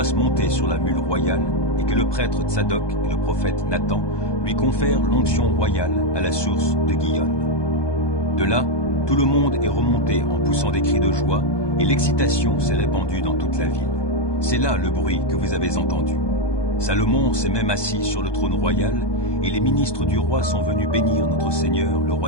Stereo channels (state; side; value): late; right; 1.2 ms